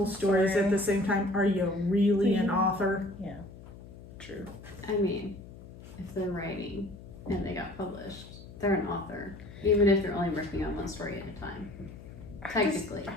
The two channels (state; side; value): noise; left; hum, 16 dB below the sound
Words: stories at the same time, are you really an author? Yeah, true. I mean, if they're writing and they got published, they're an author, even if they're only working on one story at a time. Technically. I